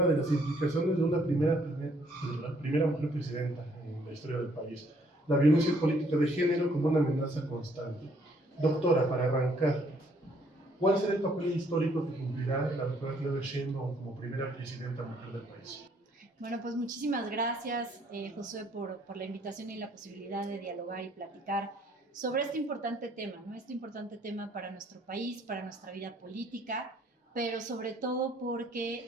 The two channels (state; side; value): normal; both; correlation 0.65